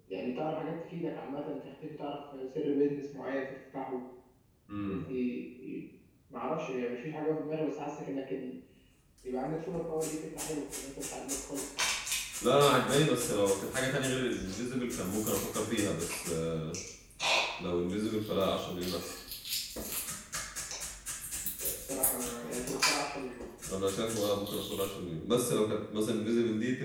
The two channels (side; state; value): both; identical; correlation 1.00